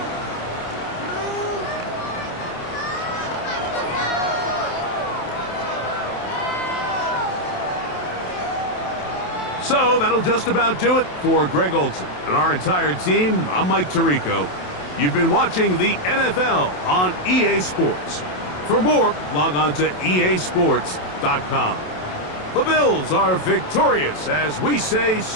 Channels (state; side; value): late; right; 27 ms